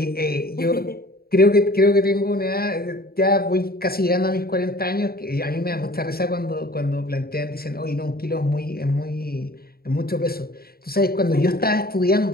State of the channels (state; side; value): late; right; 0.44 ms